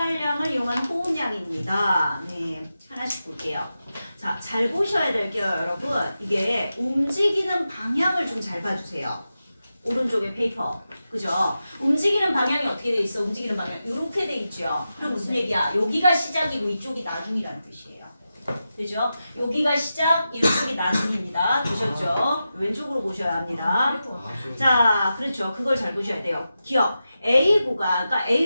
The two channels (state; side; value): inverted; both; correlation -0.91